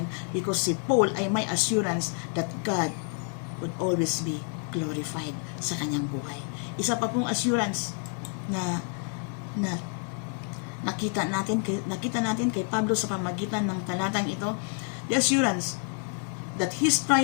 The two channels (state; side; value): quieter; right; 39.6 dB